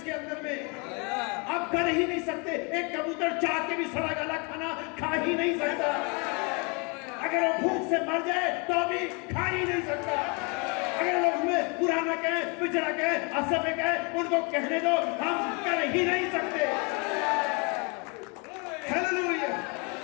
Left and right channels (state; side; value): quieter; right; 32.5 dB